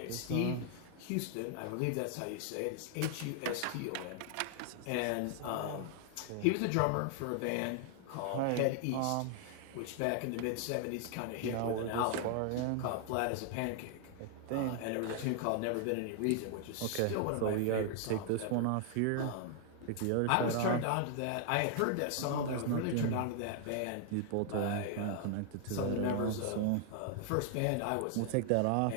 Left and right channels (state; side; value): different; both; correlation 0.00